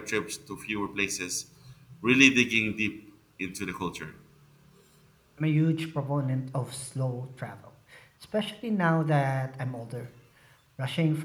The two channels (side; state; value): both; identical; correlation 1.00